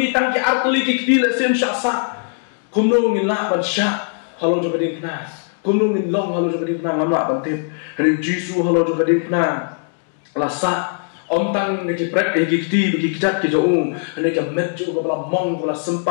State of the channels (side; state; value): right; silent; 64 dB below the other